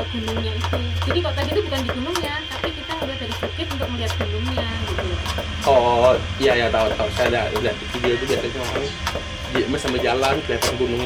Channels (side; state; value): both; identical; correlation 1.00